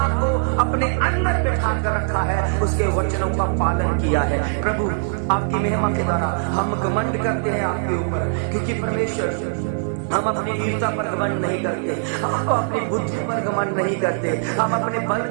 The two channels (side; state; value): left; silent; 65 dB below the other